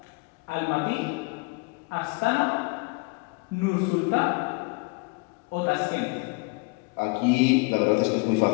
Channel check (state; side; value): quieter; right; 29.5 dB